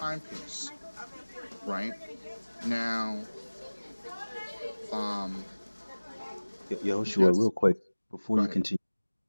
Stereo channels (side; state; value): both; inverted; correlation -1.00